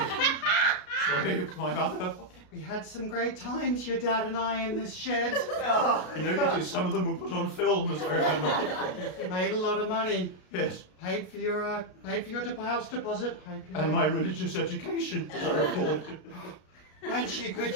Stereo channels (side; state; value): right; late; 33 ms